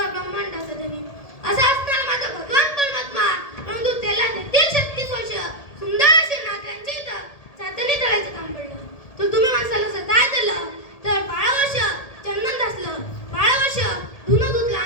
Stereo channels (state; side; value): late; right; 1.8 ms